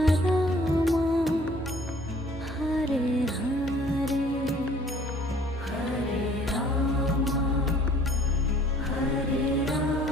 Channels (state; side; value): normal; both; correlation 0.55